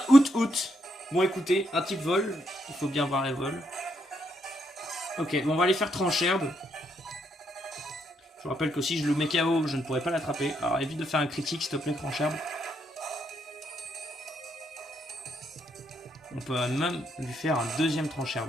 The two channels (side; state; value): both; normal; correlation 0.76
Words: Out. Bon, écoutez, un type vol. Il faut bien voir les vols. Ok, bon, on va aller faire Trancherbe. Je vous rappelle que si je le mets KO, je ne pourrai pas l'attraper. Alors évite de faire un critique, s'il te plaît, Trancherbe. On peut même lui faire un deuxième